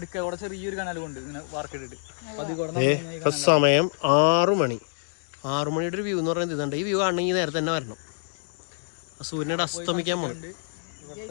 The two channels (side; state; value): right; silent; digital silence